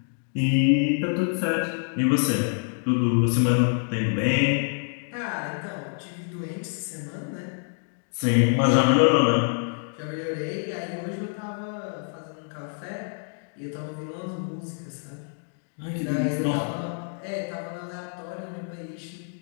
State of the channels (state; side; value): silent; right; 59 dB below the other